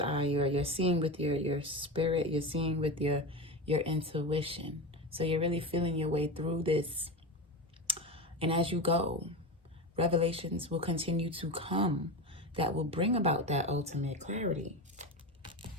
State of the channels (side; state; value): both; normal; correlation 0.22